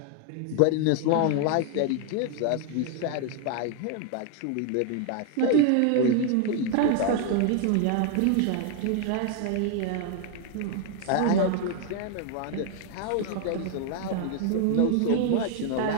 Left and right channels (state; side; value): different; both; correlation 0.00